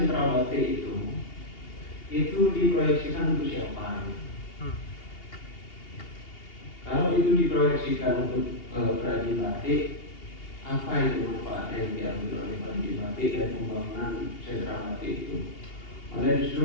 batik itu diproyeksikan untuk siapa? Kalau itu diproyeksikan untuk perajin batik, apa itu manfaatnya yang diambil oleh perajin batik dan pembangunan sentra batik itu? Malah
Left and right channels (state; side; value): late; right; 2.8 ms